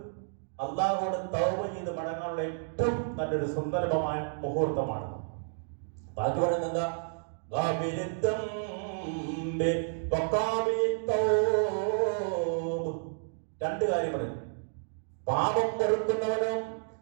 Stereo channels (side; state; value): left; silent; digital silence